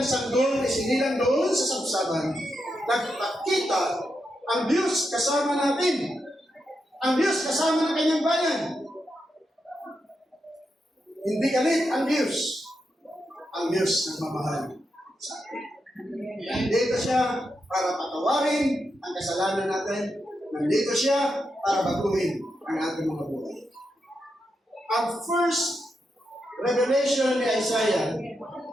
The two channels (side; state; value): both; normal; correlation 0.85